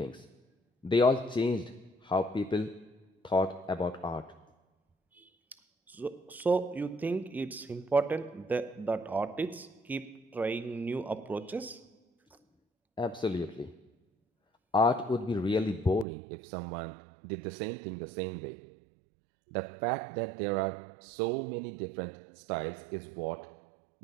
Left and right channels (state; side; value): drops out; left; at 16.1 s